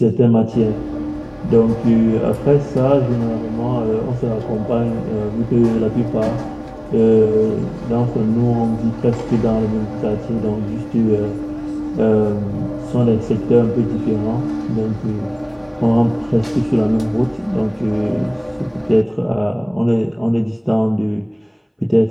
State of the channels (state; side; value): identical; both; correlation 1.00